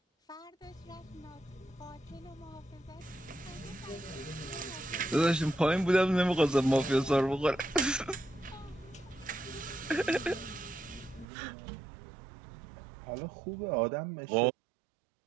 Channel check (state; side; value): drops out; left; at 11.2 s